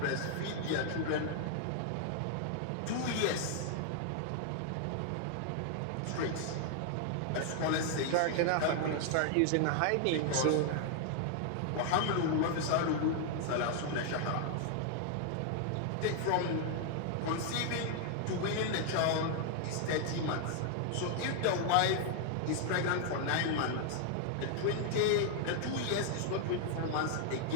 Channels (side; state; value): both; different; correlation 0.00